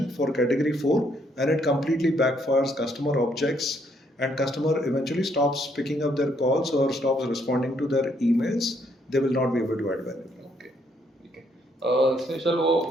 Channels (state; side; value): normal; both; correlation 0.71